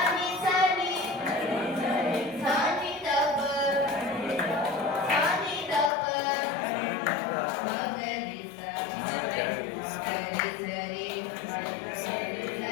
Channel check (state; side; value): drops out; right; at 5.9 s